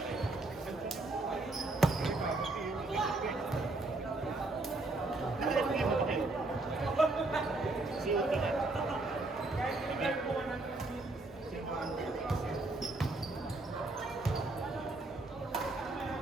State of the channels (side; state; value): left; quieter; 3.0 dB